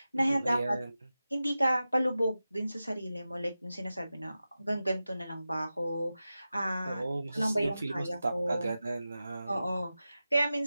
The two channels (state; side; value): inverted; both; correlation -0.93